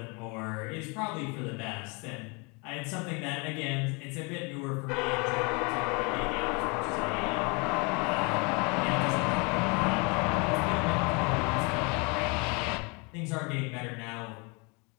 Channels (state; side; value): quieter; right; 30.7 dB